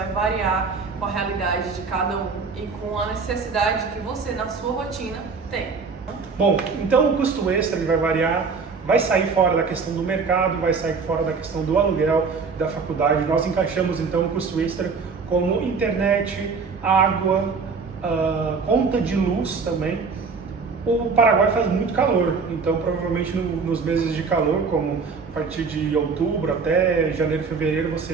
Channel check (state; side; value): quieter; left; 4.9 dB